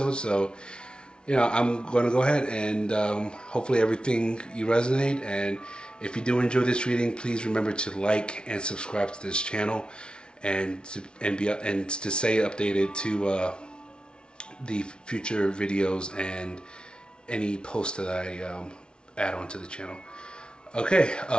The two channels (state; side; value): late; right; 0.056 ms